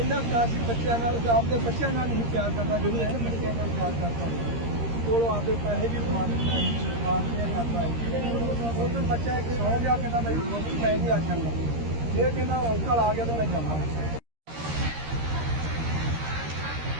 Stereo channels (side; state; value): left; late; 13 ms